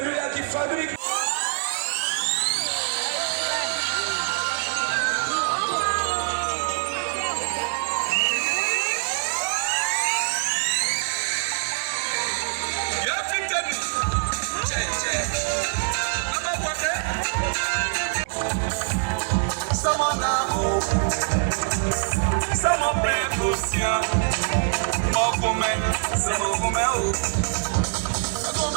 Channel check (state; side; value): silent; left; digital silence